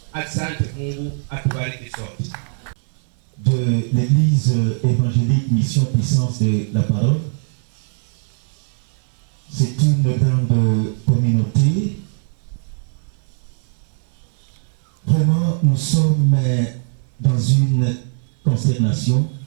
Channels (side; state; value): left; silent; 61 dB below the other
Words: Asante Mungu, atubariki sote. De l'Église évangélique Mission Puissance de la Parole. C'est une grande communauté. Vraiment, nous sommes dans une consternation